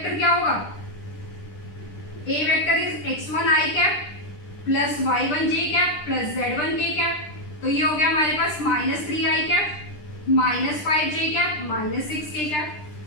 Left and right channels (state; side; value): late; right; 10 ms